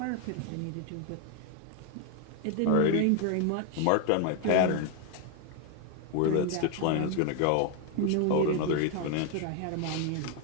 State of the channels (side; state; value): both; different; correlation 0.01